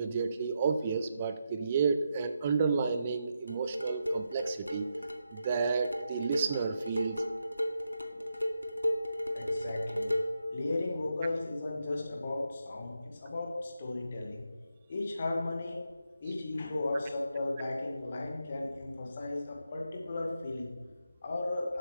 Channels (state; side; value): inverted; both; correlation -0.84